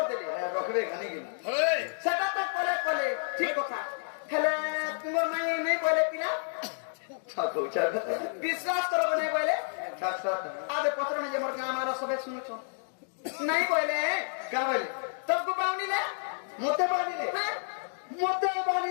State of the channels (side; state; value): right; silent; digital silence